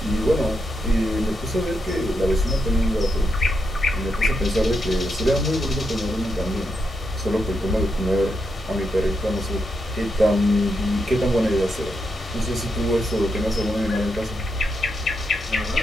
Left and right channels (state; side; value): normal; both; correlation 0.83